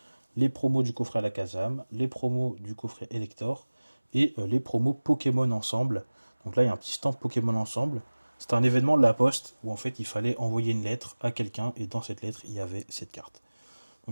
les promos du coffret Alakazam, les promos du coffret Elector et les promos Pokémon ensemble. Donc là, il y a un petit stand Pokémon ensemble. C'était un événement de la Poste où en fait il fallait envoyer une lettre à quelqu'un et dans cette lettre il y avait cette carte.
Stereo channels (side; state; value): both; inverted; correlation -1.00